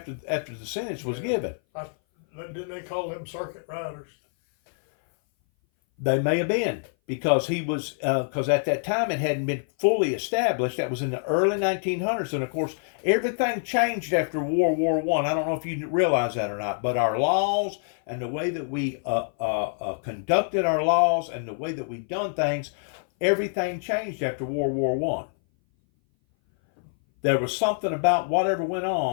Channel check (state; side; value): silent; right; 58 dB below the other